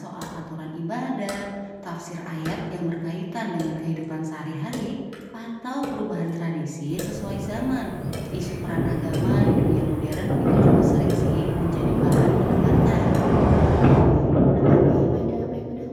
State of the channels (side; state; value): both; identical; correlation 1.00